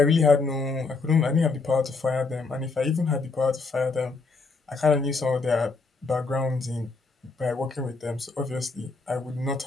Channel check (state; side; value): quieter; right; 4.1 dB